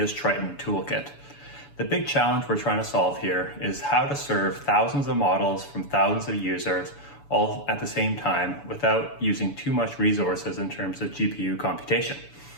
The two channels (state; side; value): late; right; 7.0 ms